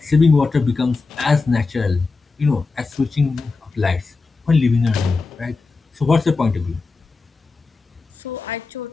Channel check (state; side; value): quieter; right; 4.1 dB